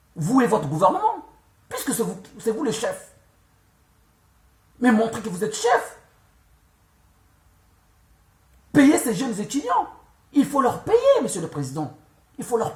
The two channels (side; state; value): both; identical; correlation 1.00